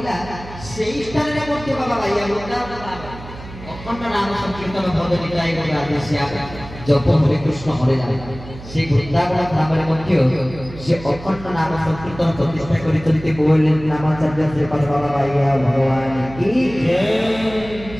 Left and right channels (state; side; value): noise; right; hum, 14 dB below the sound